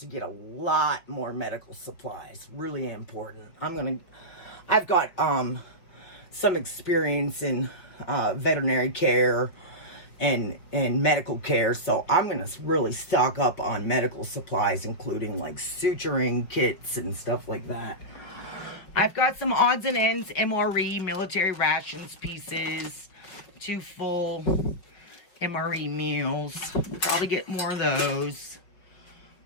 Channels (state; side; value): late; right; 5.5 ms